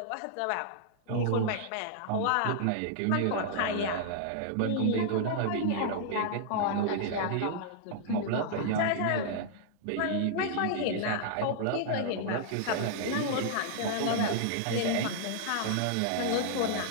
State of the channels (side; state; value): both; different; correlation -0.01